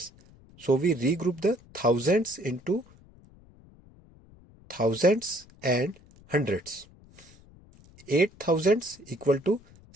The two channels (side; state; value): left; noise; rumble, 25 dB below the sound